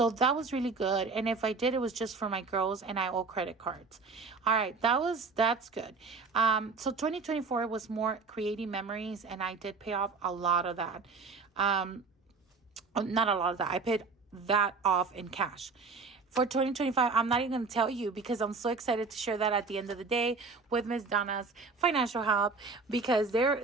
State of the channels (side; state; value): left; quieter; 4.4 dB